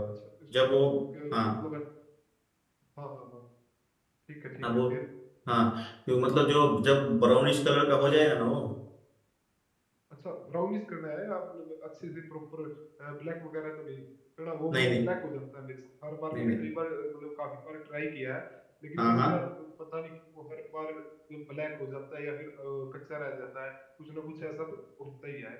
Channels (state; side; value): identical; both; correlation 1.00